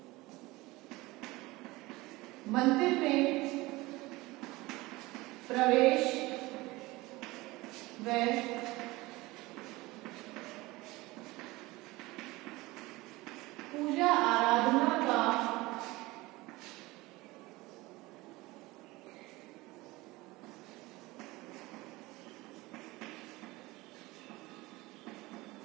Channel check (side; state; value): left; quieter; 21.0 dB